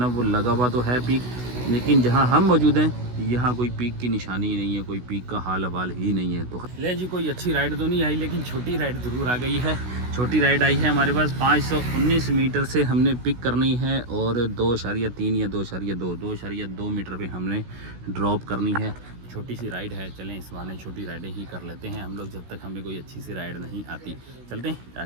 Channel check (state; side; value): late; left; 16 ms